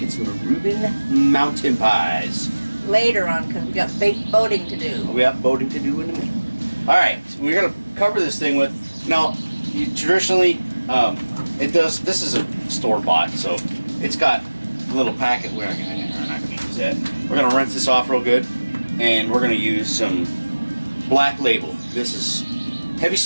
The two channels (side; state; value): both; inverted; correlation -1.00